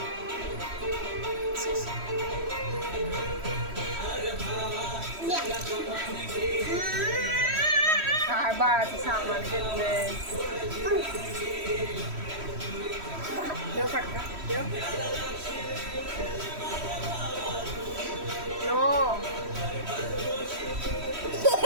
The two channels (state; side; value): late; left; 3.1 ms